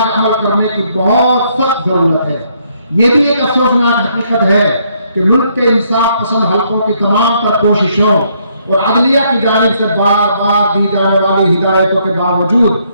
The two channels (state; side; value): inverted; both; correlation -0.71